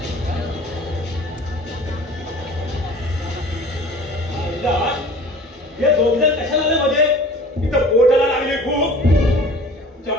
हे दोघ जण कशाला मध्ये इथं पोटाला लागले खूप. त्या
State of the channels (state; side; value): normal; both; correlation 0.45